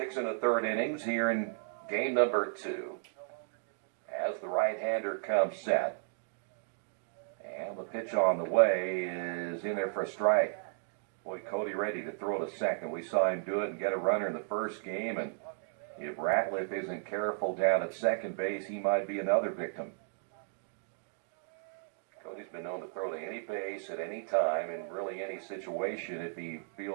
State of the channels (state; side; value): silent; left; digital silence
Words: 1/3 innings here in game number 2. As the right-hander comes set. And the pitch on the way is in there for a strike. Boy, Cody ready to throw to second. We saw him do it and get a runner in the first game. And if Ratliff isn't careful down at second base, he might be another victim. Cody's been known to throw to any base at any time in really any situation if he